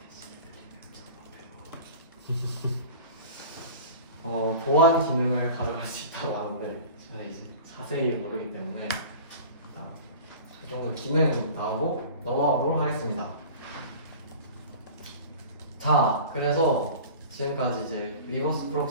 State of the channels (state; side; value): inverted; both; correlation -0.38